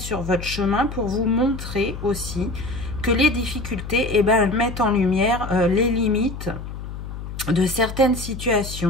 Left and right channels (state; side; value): noise; left; hum, 9 dB below the sound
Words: votre chemin? Pour vous montrer aussi que les difficultés, eh ben, elles mettent en lumière les limites de certaines